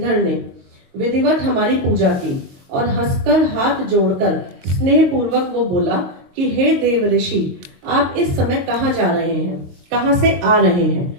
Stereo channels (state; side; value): late; left; 22 ms